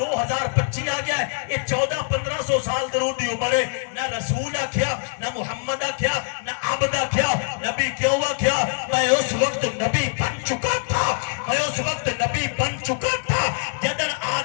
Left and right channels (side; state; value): right; silent; digital silence